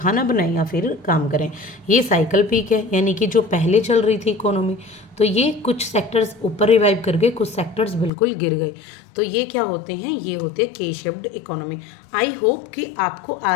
बनाएं या फिर काम करें। ये साइकिल पीक है, यानी कि जो पहले चल रही थी इकोनॉमी, तो ये कुछ सेक्टर्स ऊपर रिवाइव कर गए, कुछ सेक्टर्स बिल्कुल गिर गए। तो ये क्या होते हैं, ये होते हैं के शेप्ड इकोनॉमी। आई होप कि आपको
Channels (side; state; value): right; drops out; at 8.1 s